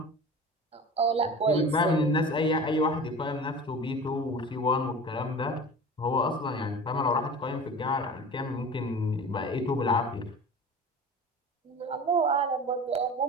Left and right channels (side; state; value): both; normal; correlation 0.36